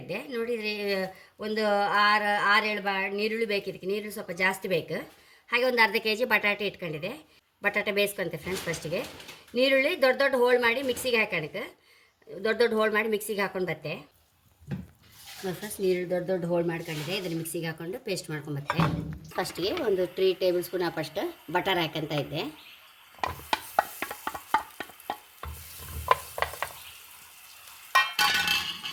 ಇದ್ದೆ. ನೋಡಿದರೆ ಒಂದು 6-7 ನೀರುಳ್ಳಿ ಬೇಕು. ಇದಕ್ಕೆ ನೀರುಳ್ಳಿ ಸ್ವಲ್ಪ ಜಾಸ್ತಿ ಬೇಕು. ಹಾಗೆ ಒಂದು ಅರ್ಧ kg ಬಟಾಟೆ ಇಟ್ಕೊಂಡಿದೆ. ಬಟಾಟೆ ಬೇಯಿಸ್ಕೊಂತೆ ಫ್ರೆಂಡ್ಸ್. ಫಸ್ಟಿಗೆ ನೀರುಳ್ಳಿ ದೊಡ್ಡ ಹೋಳು ಮಾಡಿ ಮಿಕ್ಸಿಗೆ ಹಾಕೋಣಕ್ಕೆ ದೊಡ್ಡ ಹೋಳು ಮಾಡಿ ಮಿಕ್ಸಿಗೆ ಹಾಕೊಂಡು ಬತ್ತೆ. ನೋಡಿ ಫ್ರೆಂಡ್ಸ್, ನೀರುಳ್ಳಿ ದೊಡ್ಡ ಹೋಳು ಮಾಡ್ಕೊಂಡಿದೆ. ಇದನ್ನು ಮಿಕ್ಸಿಗೆ ಹಾಕೊಂಡು ಪೇಸ್ಟ್ ಮಾಡ್ಕೊಂಬತ್ತೆ. ಫಸ್ಟಿಗೆ ಒಂದು 3 ಟೇಬಲ್ ಸ್ಪೂನ್ ಅಷ್ಟು ಬಟರ್ ಹಾಕಂತ ಇದ್ದೆ.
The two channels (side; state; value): both; identical; correlation 1.00